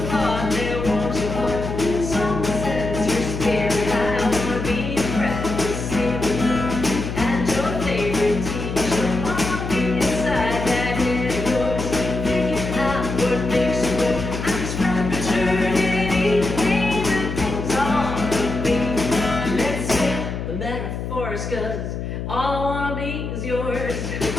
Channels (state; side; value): noise; left; hum, 5 dB below the sound